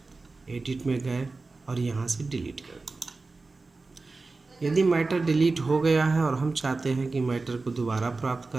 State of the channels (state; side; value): quieter; left; 3.7 dB